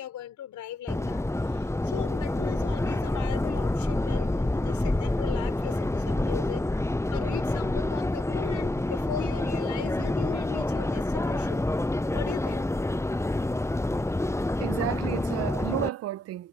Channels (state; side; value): normal; both; correlation 0.83